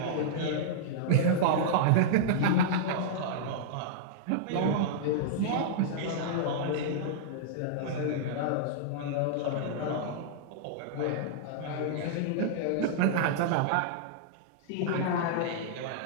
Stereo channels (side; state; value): both; different; correlation -0.02